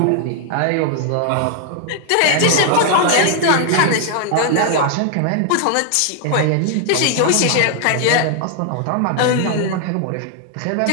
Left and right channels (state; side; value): different; both; correlation 0.00